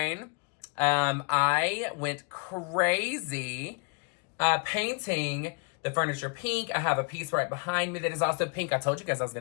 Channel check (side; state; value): right; quieter; 33.3 dB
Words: I went crazy painting the furniture pink. I have a piece right behind me that is also pink. I told you guys I was